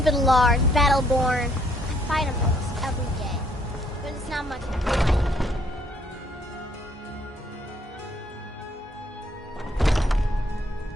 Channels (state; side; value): normal; both; correlation 0.66